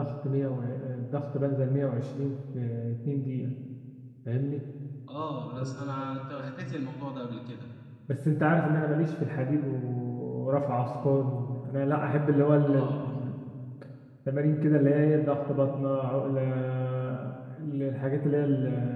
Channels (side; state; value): both; identical; correlation 1.00